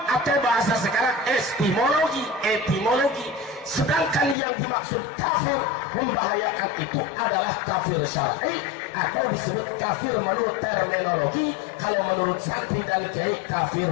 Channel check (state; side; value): drops out; right; at 4.4 s